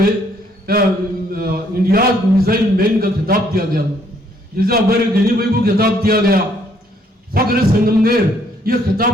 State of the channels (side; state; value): both; normal; correlation 0.67